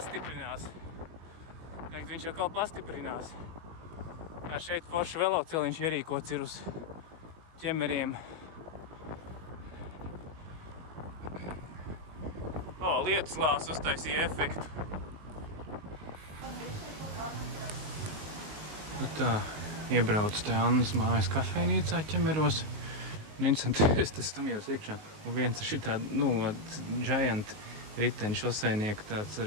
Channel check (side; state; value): left; late; 19 ms